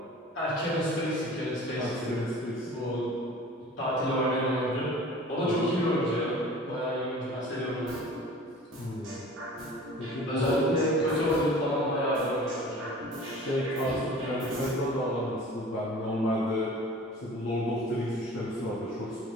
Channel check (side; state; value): both; normal; correlation 0.44